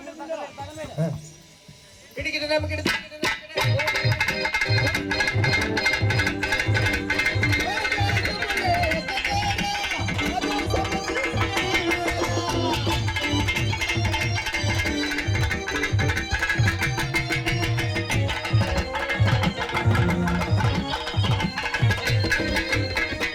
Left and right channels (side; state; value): both; identical; correlation 1.00